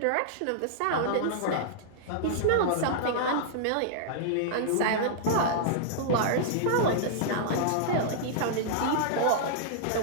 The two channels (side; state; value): both; different; correlation -0.01